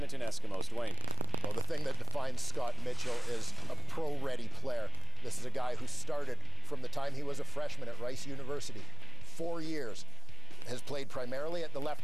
Eskimos. Dwayne. Well, the thing that defines Scott Mitchell is a pro-ready player. This is a guy who started from the time he was a freshman at Rice University. 4 years. Has played primarily at the left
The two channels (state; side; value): normal; both; correlation 0.86